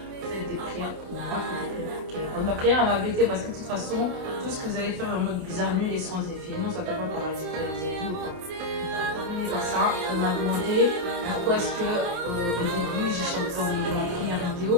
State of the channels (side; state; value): left; late; 28 ms